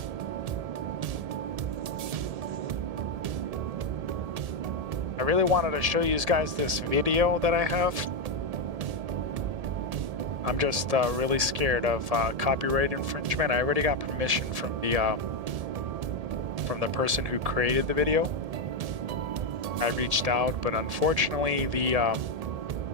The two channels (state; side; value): late; left; 1.7 ms